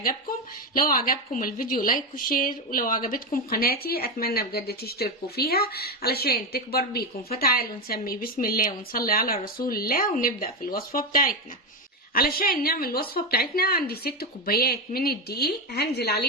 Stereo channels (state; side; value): normal; both; correlation 0.13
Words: لو عجبكم الفيديو لايك وشير، ولو عجبتكم قناتي أتمنى بجد تشتركوا فيها علشان تكبر بيكم. فتعالوا نسمي بسم الله ونصلي على رسول الله ونبدأ في الوصفة بتاعتنا. علشان نعمل الوصفة بتاعتنا عندي 6 كوبايات من الدقيق، هنزل